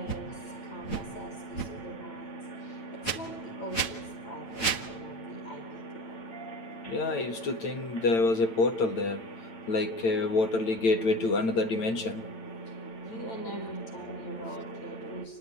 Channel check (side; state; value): right; late; 8.9 ms